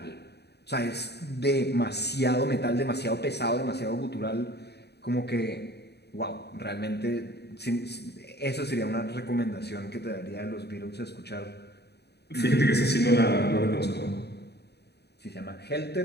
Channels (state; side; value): late; right; 0.48 ms